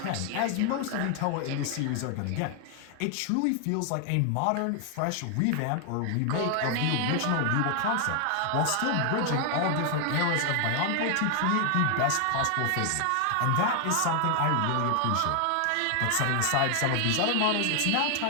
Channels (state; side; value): different; both; correlation 0.00